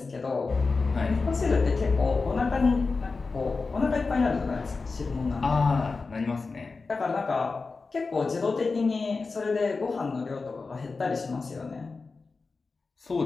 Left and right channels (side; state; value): right; quieter; 4.2 dB